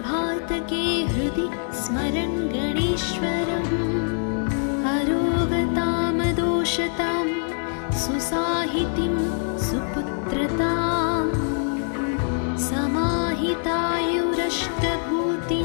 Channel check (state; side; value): silent; right; 58 dB below the other